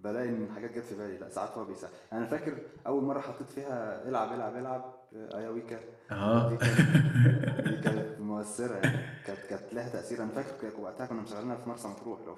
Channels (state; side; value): identical; both; correlation 1.00